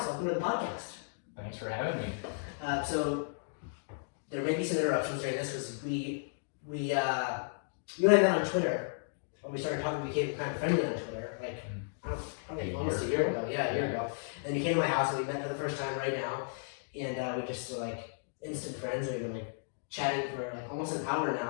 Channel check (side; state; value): right; silent; digital silence